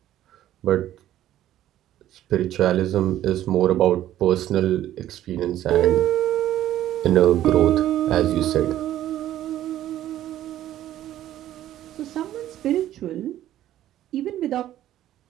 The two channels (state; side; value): quieter; left; 12.8 dB